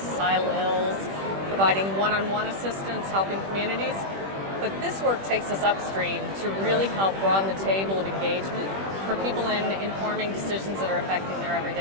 ills, providing one-on-one assistance, helping communities. But this work takes us upstream to really help broaden the table of engagement for people in informing decisions that are affecting their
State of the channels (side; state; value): left; late; 21 ms